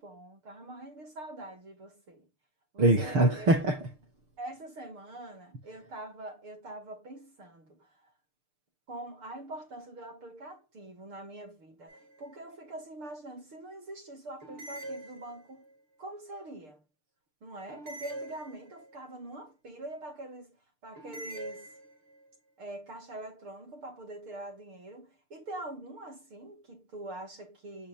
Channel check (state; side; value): late; left; 6.6 ms